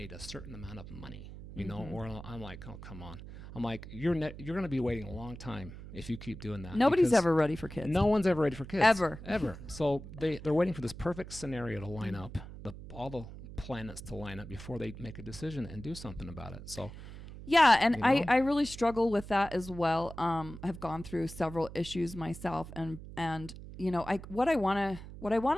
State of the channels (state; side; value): noise; right; hum, 13 dB below the sound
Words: a certain amount of money, you know, or I'm like, oh, come on. I'm like, you're going to be waiting a long time if you keep doing that. Nobody's because ever ready for kids. No one's ever ready for kids. Ever. So they're waiting for this perfect scenario to line up, all the planets to line up before they make a decision and do something about it. So yeah, and you know? I really struggle with that as well. I've gone through several issues myself, and you know, what I want